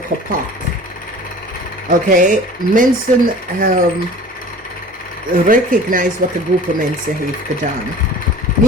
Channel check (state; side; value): normal; both; correlation 0.43